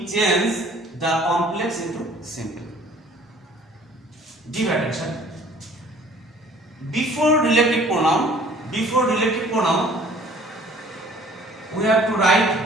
change the complex into simple? Give attention. Before relative pronoun, we have to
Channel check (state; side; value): normal; both; correlation 0.53